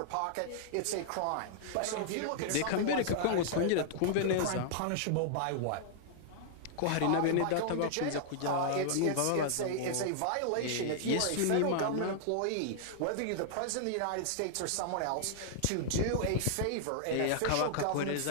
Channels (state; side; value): different; both; correlation -0.01